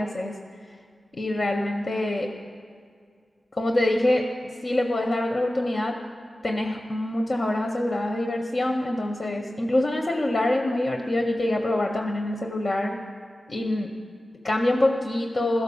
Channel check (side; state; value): both; normal; correlation 0.95